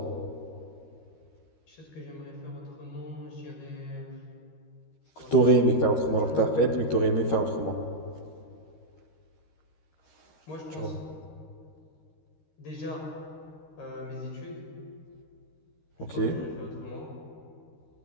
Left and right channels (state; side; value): late; right; 13 ms